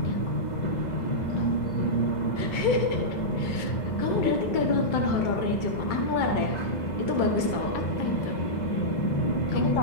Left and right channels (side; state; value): right; late; 2.2 ms